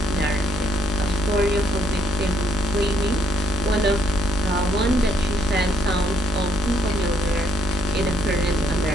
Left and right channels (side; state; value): both; normal; correlation 0.69